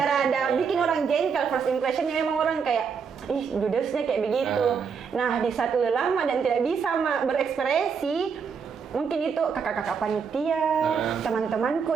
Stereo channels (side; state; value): left; quieter; 6.2 dB